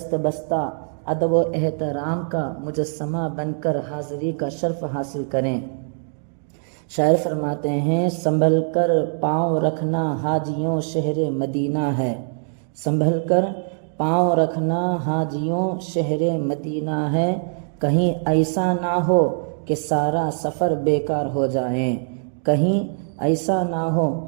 بستہ ادب و احترام کا مجسمہ بن کر حاضری کا شرف حاصل کریں۔ شاعر فرماتے ہیں سنبھل کر پاؤں رکھنا حاجیوں شہر مدینہ ہے، سنبھل کر پاؤں رکھنا حاجیوں شہر مدینہ ہے، کہیں ایسا نہ ہو کہ سارا سفر بیکار ہو جائیں، کہیں ایسا نہ ہو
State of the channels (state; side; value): silent; left; digital silence